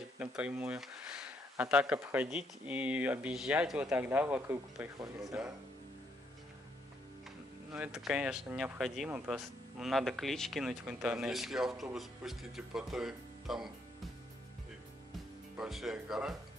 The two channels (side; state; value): both; normal; correlation 0.73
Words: напрямую. А так обходить и объезжать вот тогда вокруг приходится. Ну, да. Ну, это, конечно, необходимо, просто надо клич кинуть в интернете. Если автобус пустите по той, там большая гора,